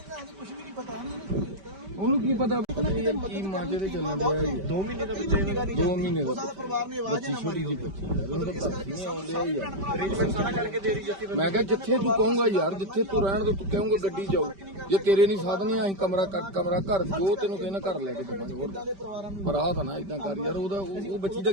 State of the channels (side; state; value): left; late; 5.1 ms